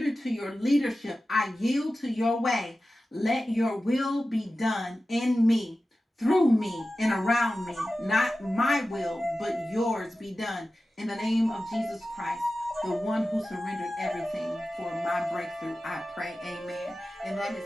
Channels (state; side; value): normal; both; correlation 0.94